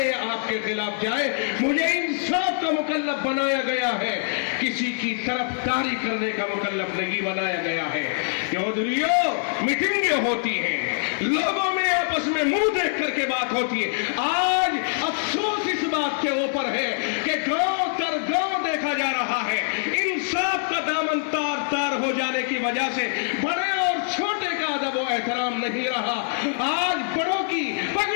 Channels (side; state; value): right; silent; 62 dB below the other